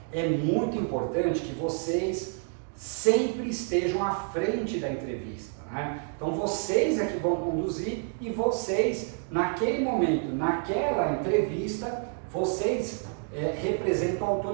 é muito importante que vocês sempre estejam à frente da entrevista, né? Então vocês é que vão conduzir e vocês, naquele momento, naquela entrevista, vocês representam a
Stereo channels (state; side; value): silent; left; 55 dB below the other